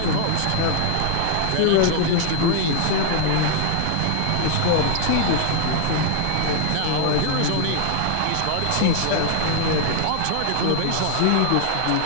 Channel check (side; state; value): both; different; correlation 0.00